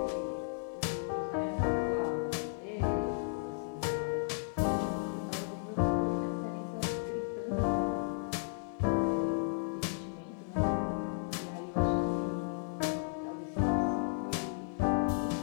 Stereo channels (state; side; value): silent; right; 55 dB below the other